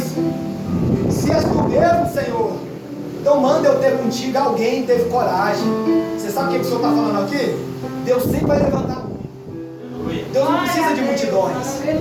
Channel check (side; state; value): both; identical; correlation 1.00